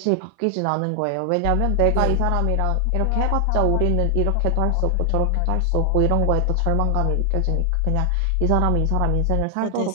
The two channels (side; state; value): both; different; correlation 0.00